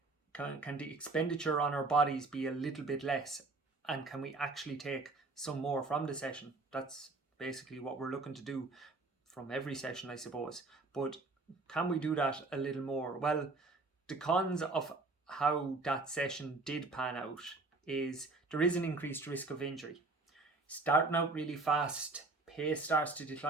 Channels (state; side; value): quieter; left; 3.5 dB